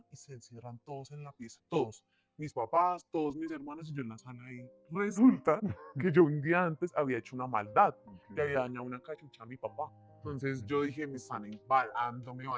y se encierran todos en la pieza. Todos. Mis papás, todos mis hermanos y yo en la sala ahí. Resulta que yo un día antes había hecho una maldad. Le había dañado una cachucha a mi papá. Entonces yo dije, me están embalando, me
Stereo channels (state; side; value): identical; both; correlation 1.00